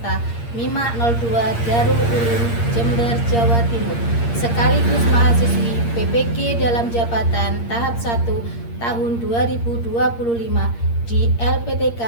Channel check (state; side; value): late; right; 8.6 ms